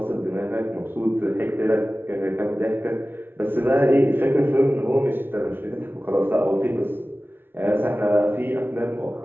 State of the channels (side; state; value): left; late; 0.11 ms